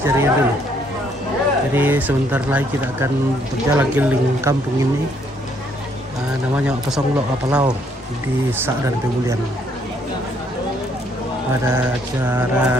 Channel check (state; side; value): normal; both; correlation 0.68